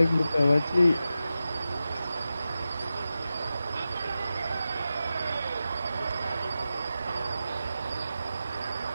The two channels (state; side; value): inverted; both; correlation -0.92